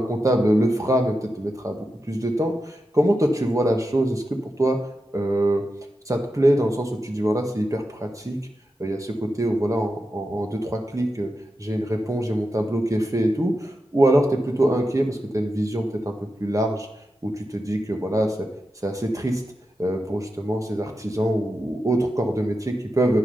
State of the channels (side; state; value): both; normal; correlation 0.89